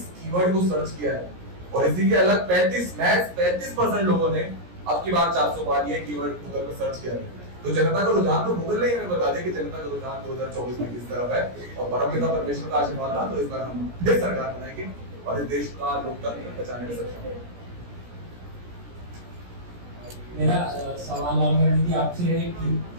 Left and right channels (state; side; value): late; left; 17 ms